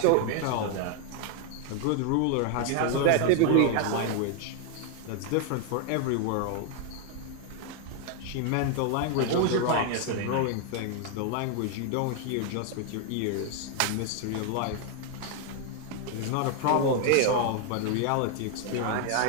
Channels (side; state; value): both; different; correlation 0.00